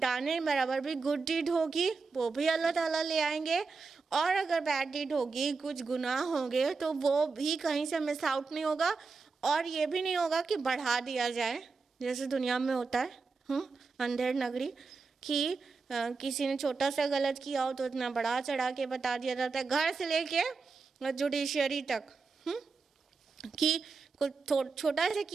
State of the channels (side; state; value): left; quieter; 4.6 dB